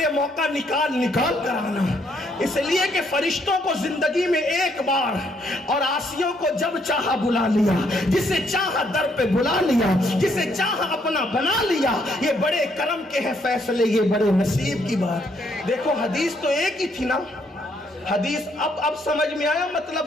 موقع نکال کر آنا, اس لیے کہ فرشتوں کو زندگی میں ایک بار اور عاصیوں کو جب چاہا بلا لیا, جسے چاہا در پہ بلا لیا, جسے چاہا اپنا بنا لیا. یہ بڑے کرم کے ہیں فیصلے, یہ بڑے نصیب کی بات. دیکھو حدیث تو ایک ہی تھی نا, حدیث اب سمجھ میں آیا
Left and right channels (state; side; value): normal; both; correlation 0.71